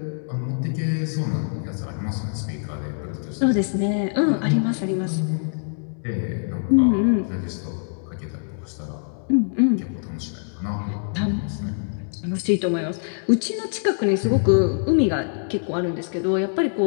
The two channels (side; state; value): right; silent; 63 dB below the other